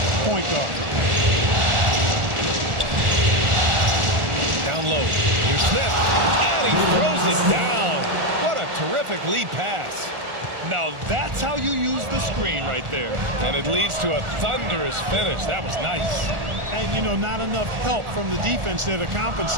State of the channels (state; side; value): late; left; 1.4 ms